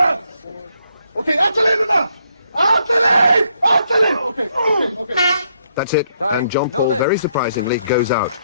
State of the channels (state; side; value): inverted; both; correlation -0.74